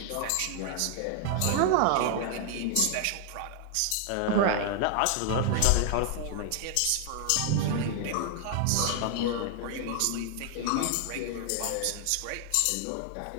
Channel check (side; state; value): both; different; correlation 0.00